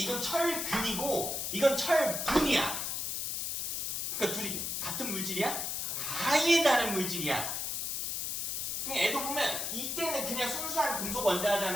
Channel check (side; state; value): left; noise; hiss, 2 dB below the sound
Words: 철근이고 이건 철분이야. 그러니까 둘이 같은 물질이야? 아예 다른 물질이야. 그냥 애도 보면 이때는 그냥 순수한 금속